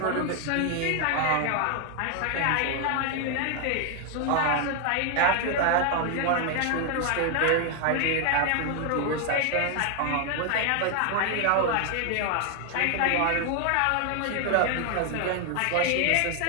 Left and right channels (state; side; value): different; both; correlation 0.01